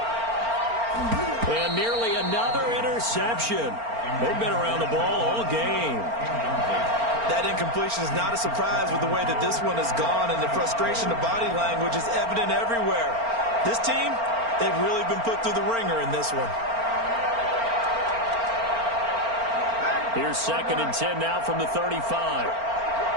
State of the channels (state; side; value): late; left; 4.4 ms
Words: And nearly another interception. They've been around the ball all game. That incompletion is not a surprise with the way that this one has gone, and the frustration of body language is evident everywhere. This team, they've really been put through the ringer in this one. Here's 2nd and 10 now from the 35.